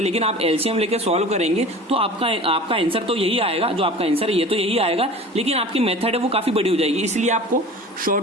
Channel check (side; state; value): both; normal; correlation 0.39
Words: लेकिन आप एलसीएम लेके सॉल्व करेंगे तो आपका आंसर तो यही आएगा, जो आपका आंसर है ये तो यही आएगा, लेकिन आपकी मेथड है वो काफी बड़ी हो जाएगी। इसलिए आपको